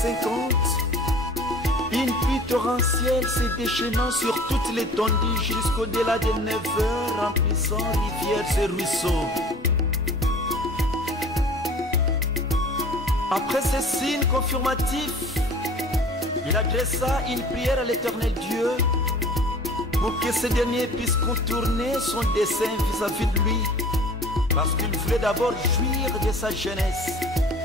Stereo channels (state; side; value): normal; both; correlation 0.45